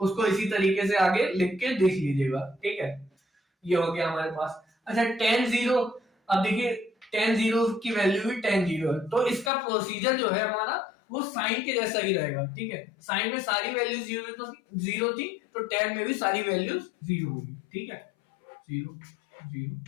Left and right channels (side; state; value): right; drops out; at 9.5 s